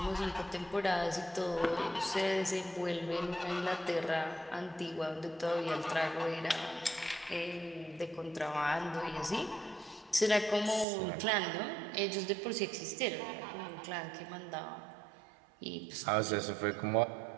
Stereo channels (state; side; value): drops out; left; at 10.9 s